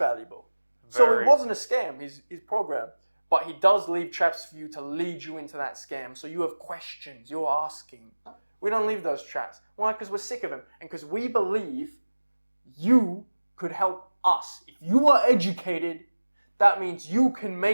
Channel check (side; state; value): both; inverted; correlation -1.00